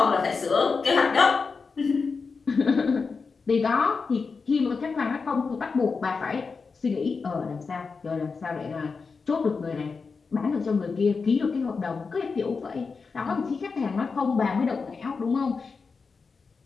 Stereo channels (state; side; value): quieter; right; 4.8 dB